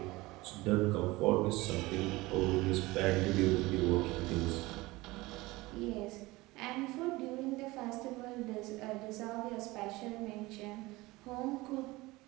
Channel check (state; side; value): quieter; left; 20.8 dB